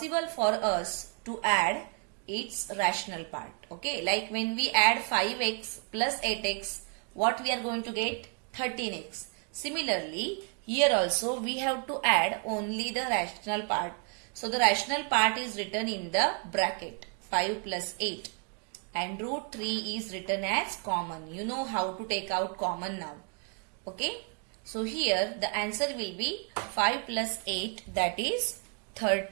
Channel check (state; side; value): quieter; left; 38.8 dB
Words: for us to add its rational part. Okay, like when we add 5x plus 8x, what we are going to get? 13x. Similarly, here also we have to add only the rational part. So the rational part is written in the bracket 5 plus 8. And root 3 is written as common. You know how to take out common now. Okay. So here the answer will be 5 plus 8, that is